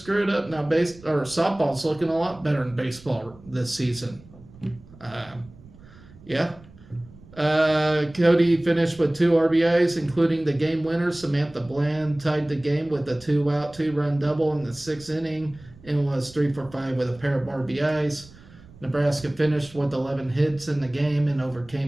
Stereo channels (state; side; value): noise; right; rumble, 22 dB below the sound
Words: it up. Now, softball's looking a lot better than baseball this season. Yeah. Cody finished with 2 RBIs, including the game winner. Samantha Bland tied the game with a 2-out, 2-run double in the 6th inning and was 3 for 5 with a pair of RBIs. Nebraska finished with 11 hits in the game and